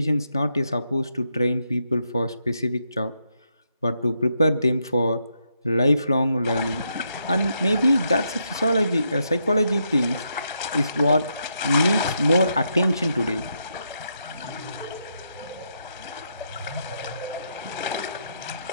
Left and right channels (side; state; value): both; inverted; correlation -0.80